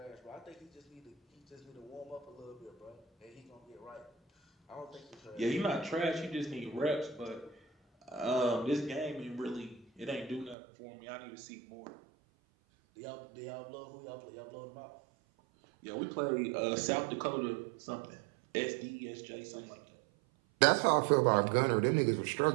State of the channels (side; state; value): left; drops out; at 10.6 s